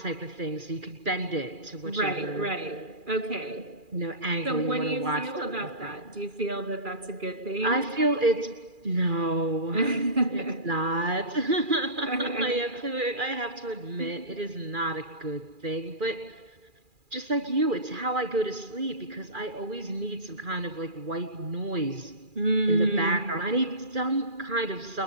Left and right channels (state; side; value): late; left; 2.4 ms